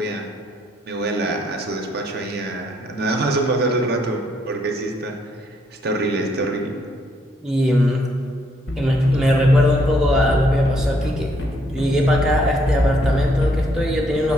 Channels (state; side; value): normal; both; correlation 0.71